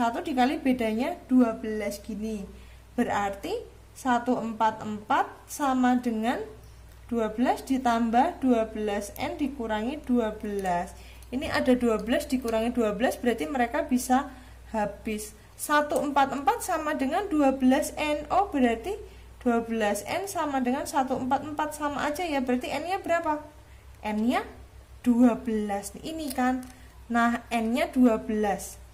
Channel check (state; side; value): identical; both; correlation 1.00